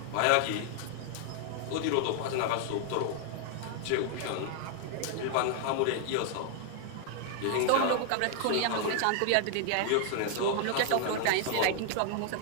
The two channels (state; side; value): different; both; correlation 0.00